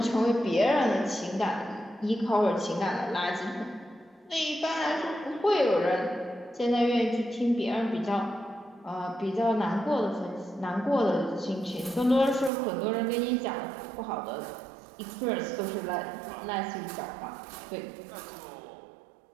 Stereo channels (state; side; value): drops out; left; at 12.5 s